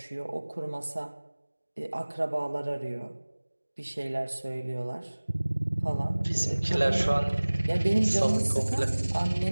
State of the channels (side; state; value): both; inverted; correlation -1.00